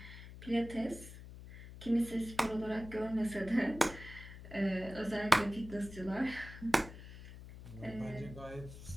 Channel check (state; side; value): noise; left; hum, 14 dB below the sound